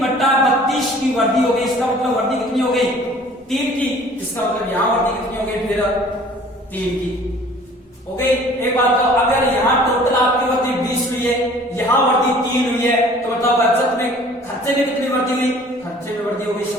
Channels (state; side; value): normal; both; correlation 0.50